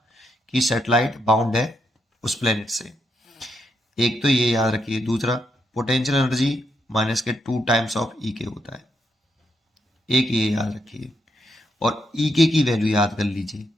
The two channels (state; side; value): normal; both; correlation 0.80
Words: कि सैटेलाइट बाउंड है उस प्लेनेट से। एक तो ये याद रखिए, दूसरा पोटेंशियल एनर्जी माइनस के 2 टाइम्स ऑफ ई के होता है, एक ये याद रखिए। और ई के की वैल्यू याद कर लीजिए,